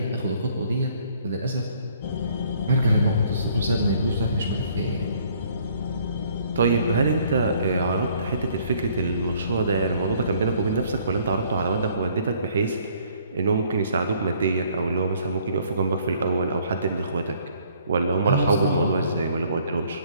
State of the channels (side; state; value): both; inverted; correlation -0.62